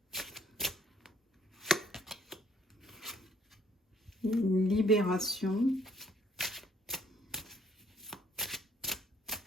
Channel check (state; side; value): normal; both; correlation 0.64